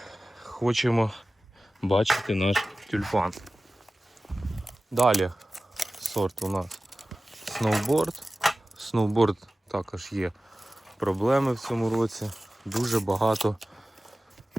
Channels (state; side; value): normal; both; correlation 0.96